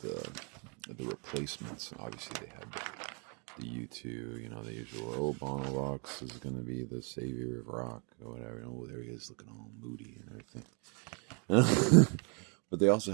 replacements. Obviously, they had the U2, the usual, Bono Rocks is going to be the savior of rock, or whatever. There he is looking all moody and everything. But they also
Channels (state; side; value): quieter; left; 35.7 dB